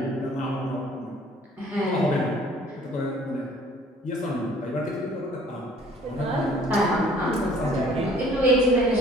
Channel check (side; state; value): both; normal; correlation 0.55